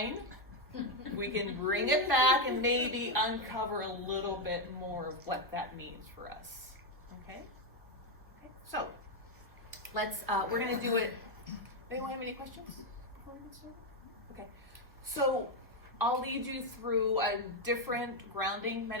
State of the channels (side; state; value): both; normal; correlation 0.05